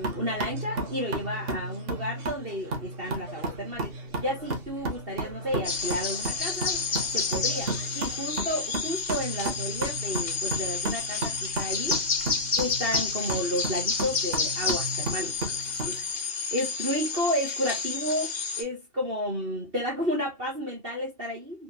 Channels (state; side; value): late; left; 2.8 ms